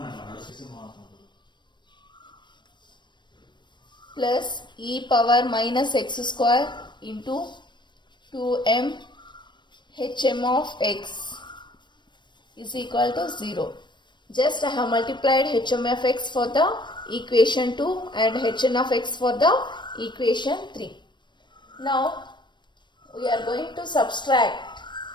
plus e power minus x square into 2m hm of x is equal to 0. Just I have multiplied hm of x for the equation 2 and hn of x for the equation 3. Now we are going to subtract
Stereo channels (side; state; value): right; late; 0.22 ms